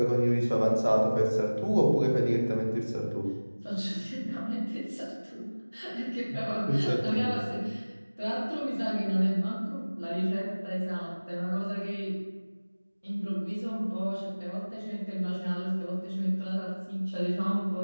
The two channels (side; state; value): both; inverted; correlation -1.00